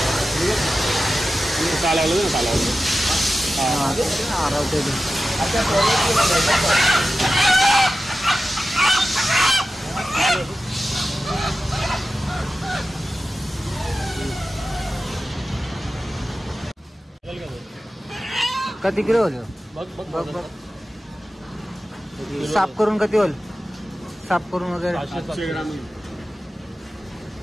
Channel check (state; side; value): normal; both; correlation 0.93